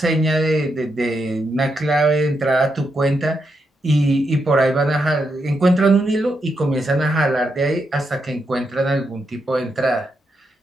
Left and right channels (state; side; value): normal; both; correlation 0.82